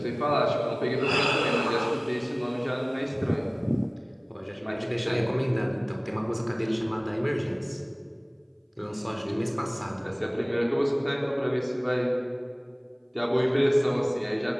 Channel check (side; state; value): both; identical; correlation 1.00